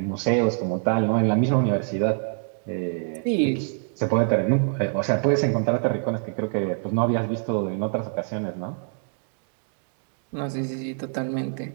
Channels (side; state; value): left; silent; digital silence